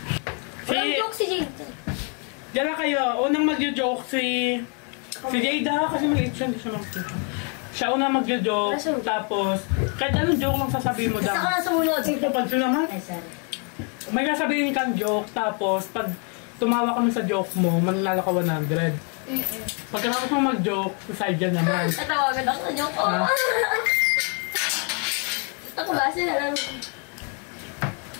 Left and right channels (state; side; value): quieter; right; 38.3 dB